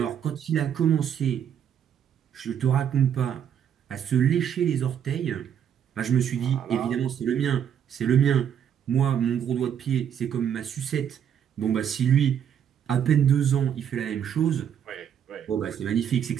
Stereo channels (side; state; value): left; quieter; 8.9 dB